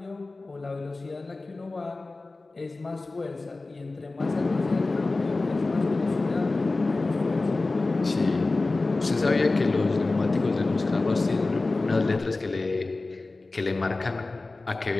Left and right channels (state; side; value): quieter; right; 3.3 dB